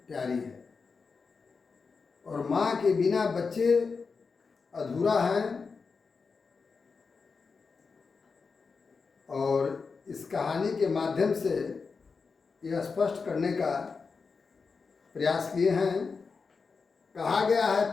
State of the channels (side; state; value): right; quieter; 4.9 dB